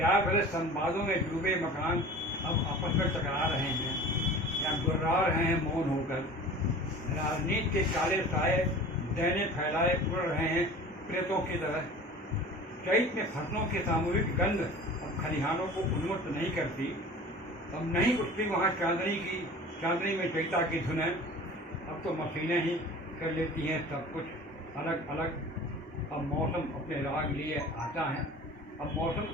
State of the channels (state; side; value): normal; both; correlation 0.40